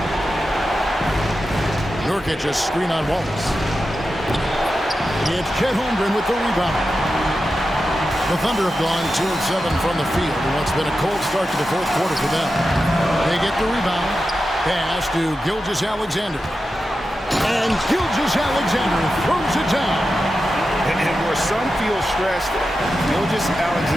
Nurkic a screen on Wallace. It's Chet Holmgren with the rebound. The Thunder have gone 2 of 7 from the field in what's been a cold start to the 4th quarter for them. They get the rebound. Pass to Gilgeous-Alexander. And Gilgeous-Alexander throws it down. And where some feel stressed,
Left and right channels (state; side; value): normal; both; correlation 0.91